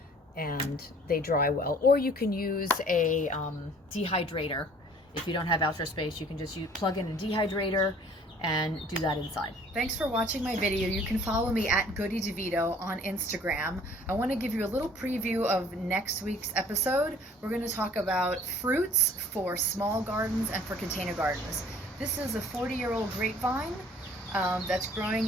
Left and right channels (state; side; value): normal; both; correlation 0.53